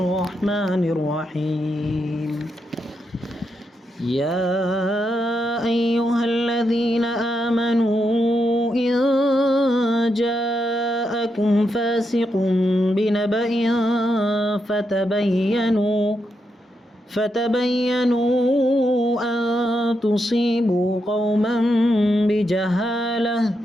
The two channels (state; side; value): normal; both; correlation 0.83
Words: الرحيم يا أيها الذين آمنوا إن جاءكم فاسق بنبأ فتبينوا أن تصيبوا قوما بجهالة